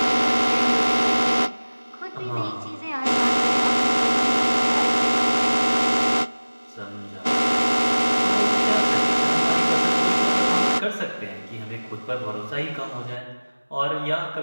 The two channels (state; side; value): inverted; both; correlation -1.00